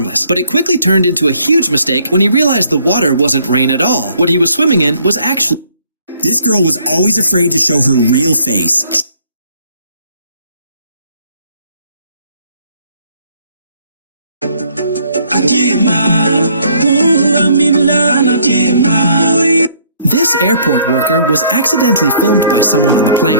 but it quickly turned into a huge mistake when he realized the water wasn't rain at all. What he was swimming in was actually... This girl was always afraid to show her real face. This airport worker was accidentally filmed by someone on the plane,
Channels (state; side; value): inverted; both; correlation -0.63